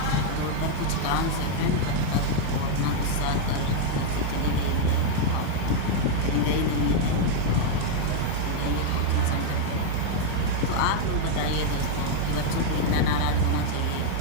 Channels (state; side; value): different; both; correlation 0.00